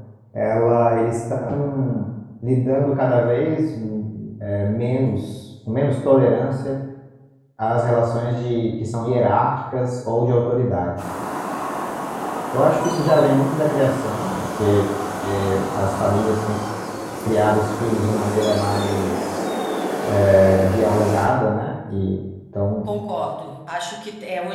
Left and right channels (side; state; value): both; identical; correlation 1.00